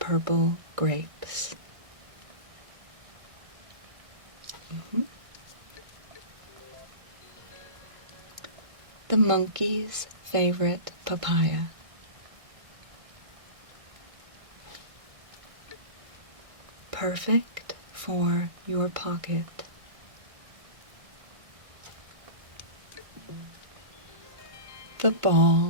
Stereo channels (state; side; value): late; left; 1.5 ms